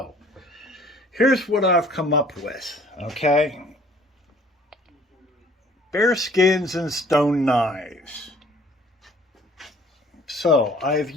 here's what I've come up with, okay? Bear skins and stone knives. So, I've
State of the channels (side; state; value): both; normal; correlation 0.55